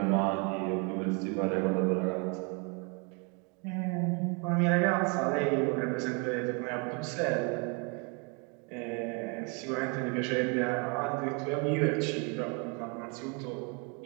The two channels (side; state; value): left; quieter; 33.8 dB